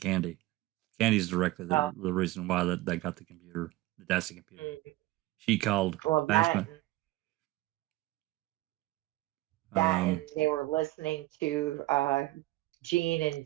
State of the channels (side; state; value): left; quieter; 18.4 dB